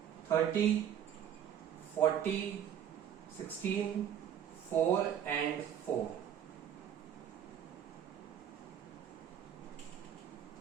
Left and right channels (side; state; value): left; quieter; 9.5 dB